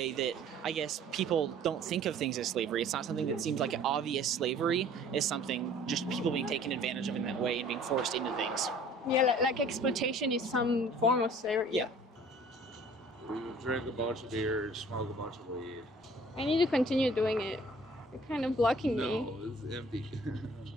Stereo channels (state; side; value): normal; both; correlation 0.52